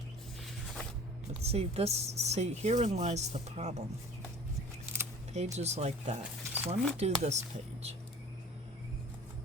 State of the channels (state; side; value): normal; both; correlation 0.45